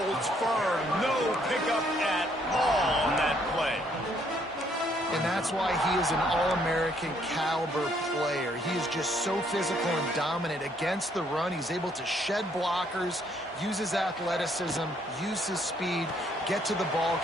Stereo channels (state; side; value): normal; both; correlation 0.68